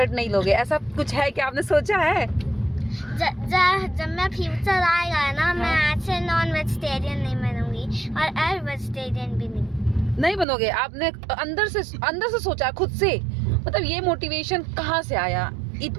नहीं लोगे, ऐसा कुछ है क्या? आपने सोचा है? जब मैं फ्यूचर आएगा ना, मैं ऐसे नॉन वेजिटेरियन नहीं बनूंगी और एग वेजिटेरियन भी नहीं बनोगे? आपने अंदर से सोचा खुद से? मतलब ये मोटिवेशन कहाँ से आया?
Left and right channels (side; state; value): left; drops out; at 10.5 s